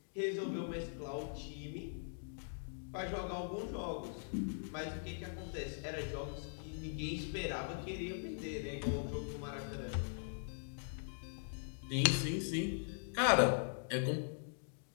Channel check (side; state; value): right; silent; digital silence